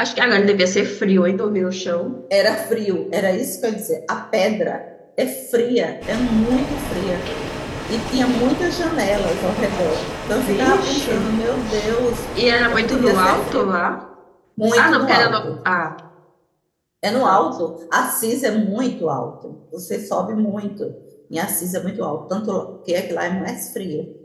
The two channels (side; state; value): both; identical; correlation 1.00